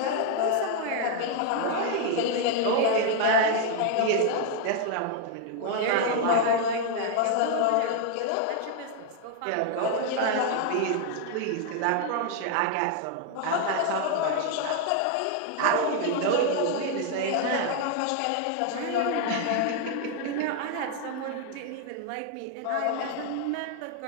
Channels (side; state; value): both; different; correlation 0.00